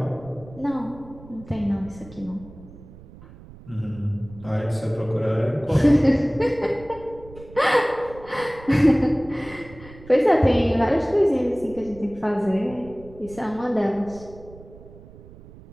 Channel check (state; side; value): noise; right; rumble, 19 dB below the sound